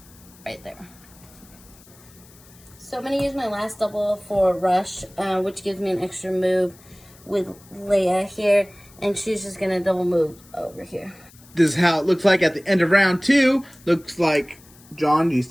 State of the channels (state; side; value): noise; left; hiss, 25 dB below the sound